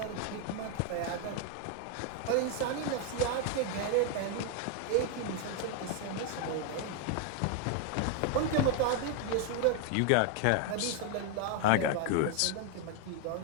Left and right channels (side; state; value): both; different; correlation 0.01